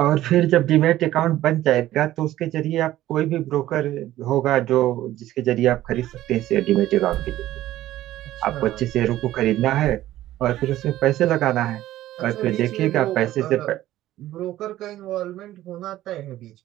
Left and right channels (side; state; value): left; quieter; 14.4 dB